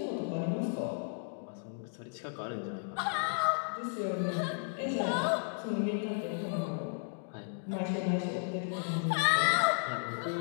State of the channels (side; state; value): right; silent; digital silence